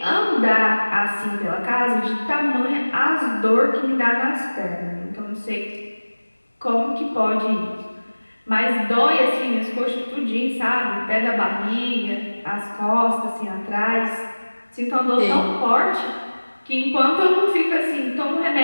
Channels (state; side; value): inverted; both; correlation -1.00